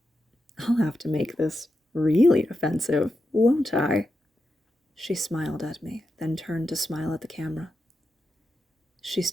I'll have to make this really offensive, won't I? She smiled at me, then turned to smile at the camera. She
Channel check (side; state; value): both; normal; correlation 0.87